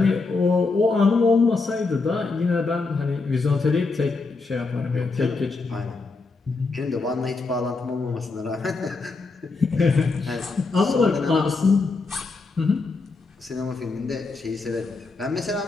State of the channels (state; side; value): quieter; right; 3.9 dB